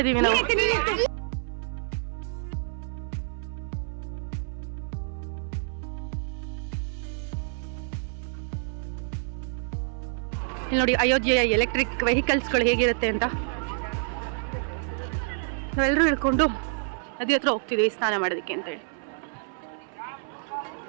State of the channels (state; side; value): silent; left; 59 dB below the other